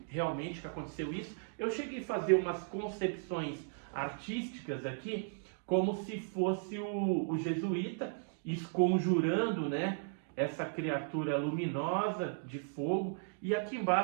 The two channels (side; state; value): left; silent; digital silence